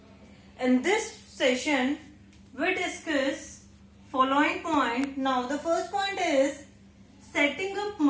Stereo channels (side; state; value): both; identical; correlation 1.00